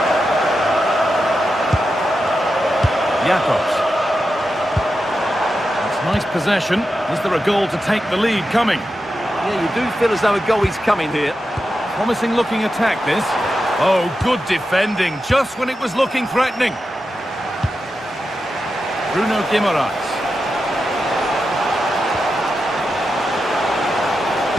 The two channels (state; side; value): normal; both; correlation 0.89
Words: Jacobs. possession. Is there a goal to take the lead coming? Yeah, you do feel as though a goal is coming here. Promising looking attack, this. Oh, good defending, just when it was looking threatening. Bruno Guimaraes.